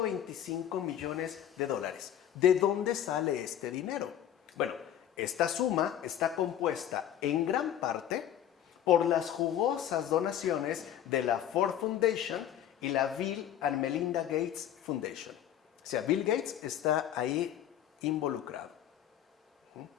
millones. ¿De dónde sale este dinero? Bueno, esta suma está compuesta en gran parte por las jugosas donaciones de la Ford Foundation y la Bill and Melinda Gates Foundation. O sea, Bill Gates está ahí involucrado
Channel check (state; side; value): quieter; right; 10.6 dB